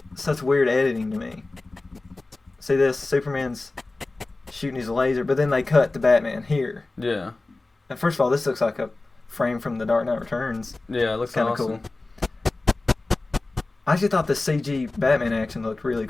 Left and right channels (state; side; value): quieter; right; 3.2 dB